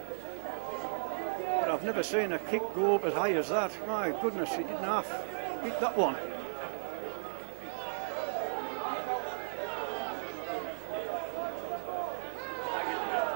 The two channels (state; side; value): silent; left; 54 dB below the other